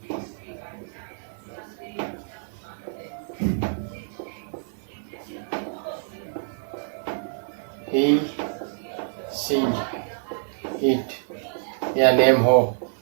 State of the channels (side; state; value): left; silent; digital silence